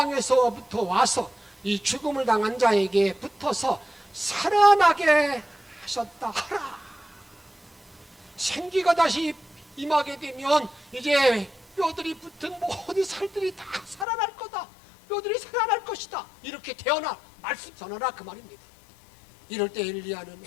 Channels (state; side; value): drops out; right; at 14.1 s